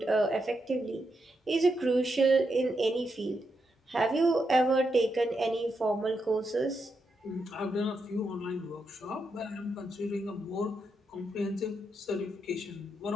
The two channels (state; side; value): normal; both; correlation 0.83